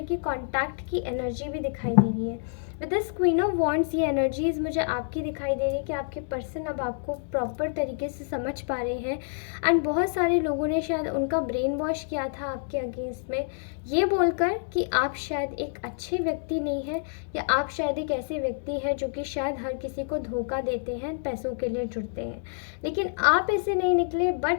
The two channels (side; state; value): right; silent; digital silence